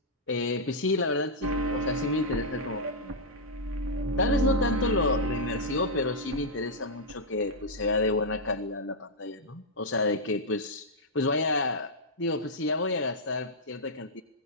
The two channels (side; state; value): both; normal; correlation -0.06